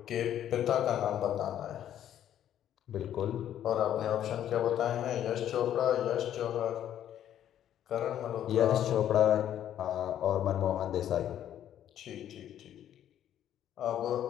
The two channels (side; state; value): right; quieter; 10.8 dB